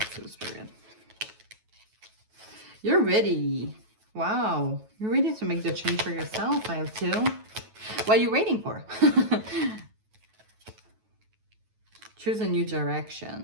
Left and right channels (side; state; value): left; late; 9.2 ms